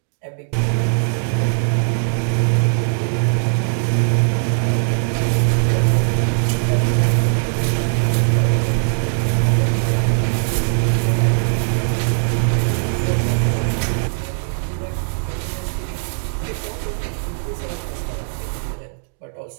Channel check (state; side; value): silent; left; digital silence